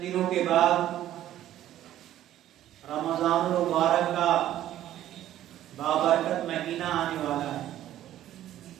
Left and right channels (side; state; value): left; quieter; 12.7 dB